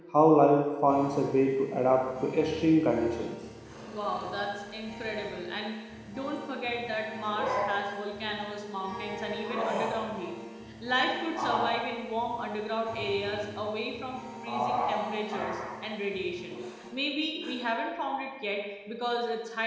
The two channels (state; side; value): identical; both; correlation 1.00